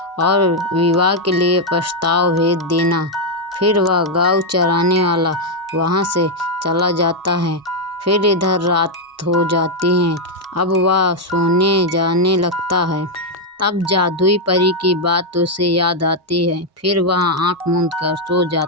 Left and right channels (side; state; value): both; normal; correlation 0.01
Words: और विवाह के लिए प्रस्ताव भेज देना। फिर वह गौ चराने वाला वहाँ से चला जाता है। फिर इधर रात हो जाती है। अब वह सोने जाने लगता है। तब जादुई परी की बात उसे याद आती है। फिर वह आँख मूंद कर सो